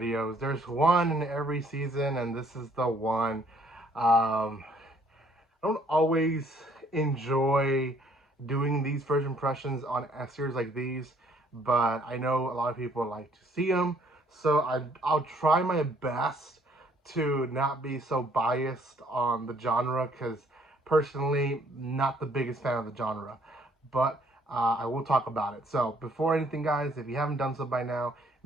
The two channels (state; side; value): normal; both; correlation 0.63